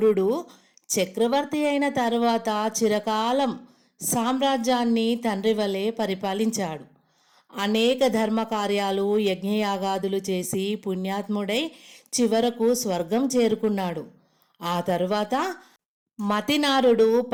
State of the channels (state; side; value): identical; both; correlation 1.00